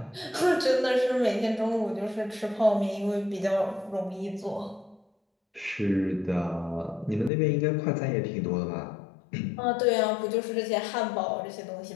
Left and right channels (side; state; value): right; drops out; at 7.3 s